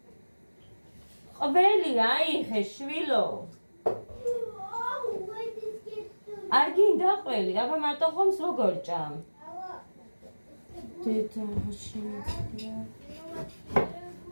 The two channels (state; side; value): inverted; both; correlation -1.00